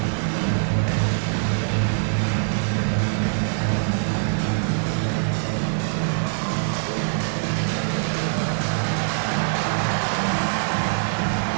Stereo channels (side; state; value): left; silent; digital silence